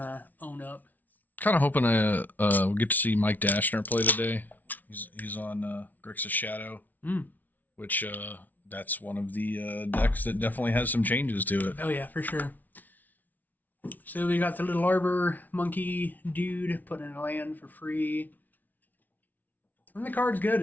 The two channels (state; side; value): late; right; 0.079 ms